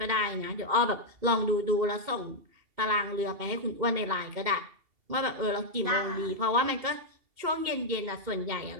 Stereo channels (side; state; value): left; late; 2.7 ms